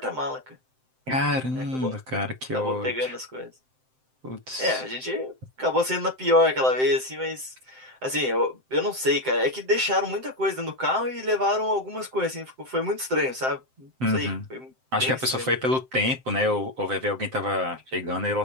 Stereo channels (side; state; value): left; late; 7.7 ms